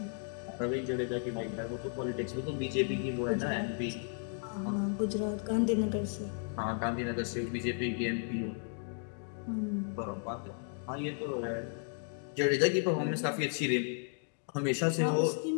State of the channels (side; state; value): right; silent; 55 dB below the other